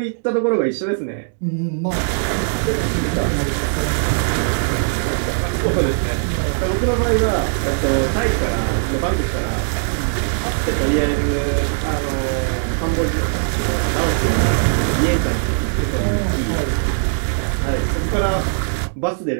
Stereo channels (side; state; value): left; silent; digital silence